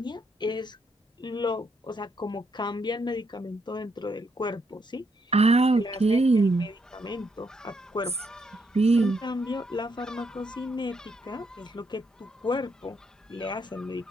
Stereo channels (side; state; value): both; normal; correlation 0.76